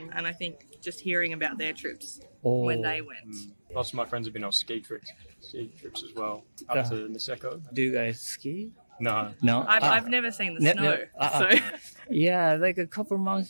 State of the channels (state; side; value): inverted; both; correlation -1.00